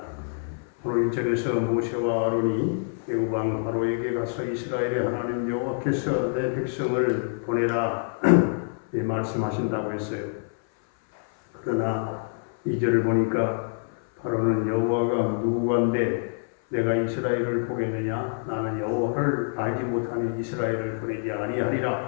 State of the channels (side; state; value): right; silent; 59 dB below the other